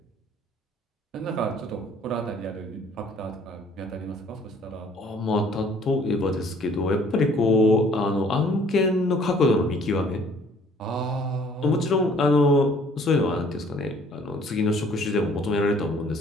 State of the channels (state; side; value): normal; both; correlation 0.57